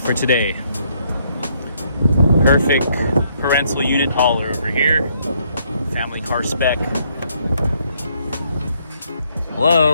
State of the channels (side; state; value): both; inverted; correlation -0.70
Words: for today. Perfect parental unit hauler over here. Family car spec.